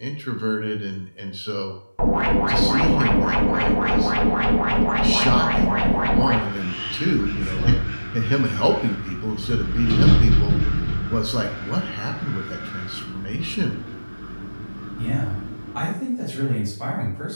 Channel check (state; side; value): inverted; both; correlation -1.00